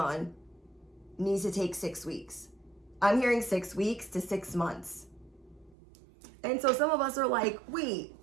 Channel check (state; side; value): drops out; left; at 5.8 s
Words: needs to take 6 weeks. I'm hearing 6 weeks to 6 months. And so some of us are like, wait,